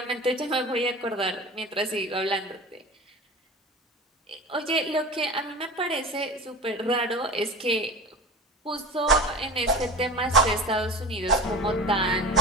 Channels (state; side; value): normal; both; correlation 0.33